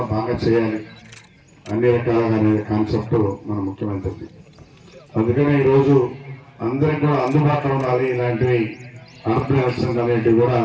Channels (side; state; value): both; identical; correlation 1.00